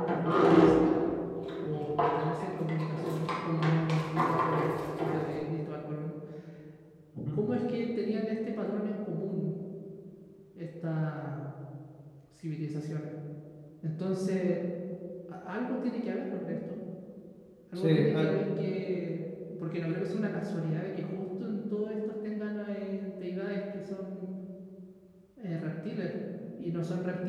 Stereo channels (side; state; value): both; identical; correlation 1.00